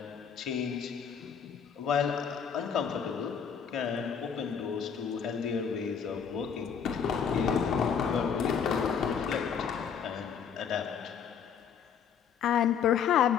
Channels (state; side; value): quieter; right; 7.3 dB